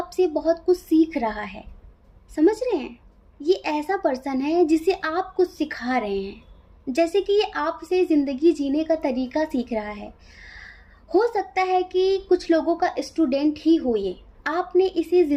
बहुत कुछ सीख रहा है। समझ रहे हैं? ये ऐसा पर्सन है जिसे आप कुछ सिखा रहे हैं, जैसे कि ये आपसे ज़िंदगी जीने का तरीका सीख रहा है। हो सकता है कि कुछ लोगों का स्टूडेंट ही हो ये, आपने इसे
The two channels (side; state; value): both; identical; correlation 1.00